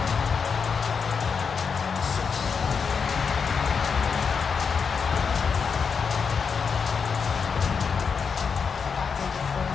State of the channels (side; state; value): right; quieter; 5.9 dB